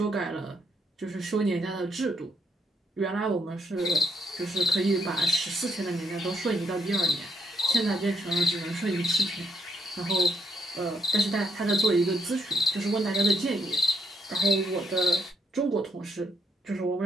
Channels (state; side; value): normal; both; correlation 0.72